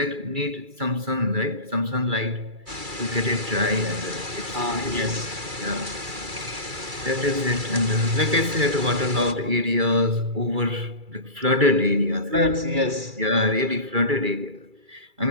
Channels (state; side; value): late; left; 2.3 ms